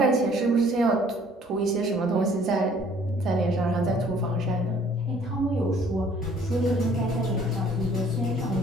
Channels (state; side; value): normal; both; correlation 0.58